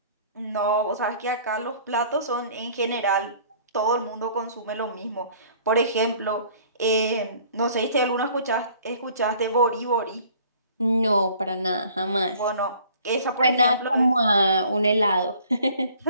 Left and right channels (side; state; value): both; inverted; correlation -0.54